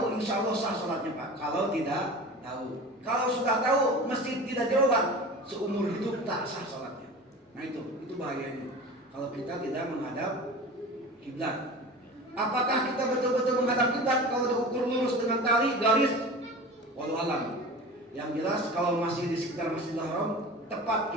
insya Allah sah sholatnya Pak. Kalau tidak tahu, kalau sudah tahu masjid tidak jauhan, seumur hidup tak sah sholatnya. Nah itu bahayanya. Kalau kita tidak menghadap kiblat. Apakah kita betul-betul menghadap kiblat kalau diukur lurus dengan tali garis? Wallahu alam. Yang jelas kalau masih di sekitar Masjidil Haram tepat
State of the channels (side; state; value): both; normal; correlation 0.35